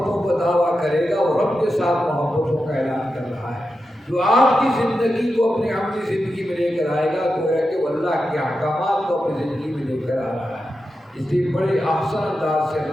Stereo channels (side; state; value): both; normal; correlation 0.89